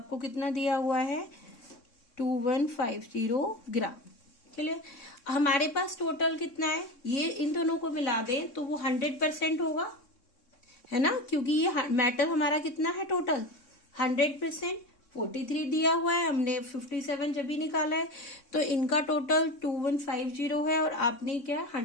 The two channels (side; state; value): right; late; 3.6 ms